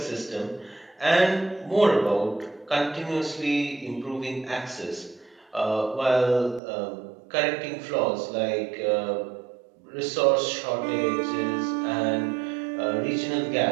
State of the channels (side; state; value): left; drops out; at 6.6 s